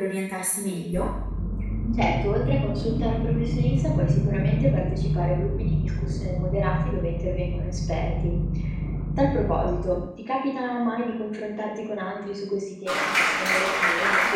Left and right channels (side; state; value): both; identical; correlation 1.00